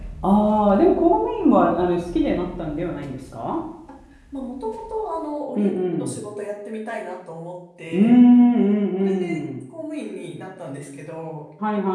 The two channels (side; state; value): both; identical; correlation 1.00